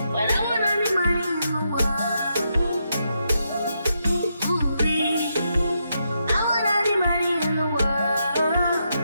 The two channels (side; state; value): both; inverted; correlation -0.82